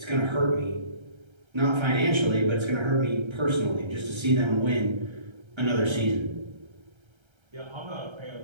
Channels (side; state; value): left; late; 1.3 ms